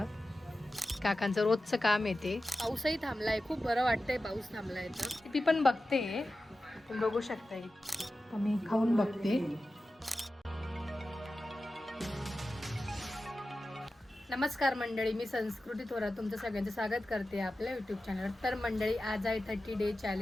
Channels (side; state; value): both; normal; correlation 0.94